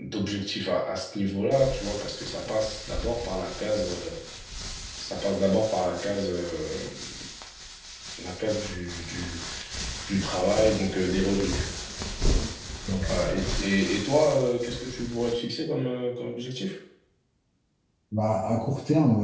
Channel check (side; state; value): both; identical; correlation 1.00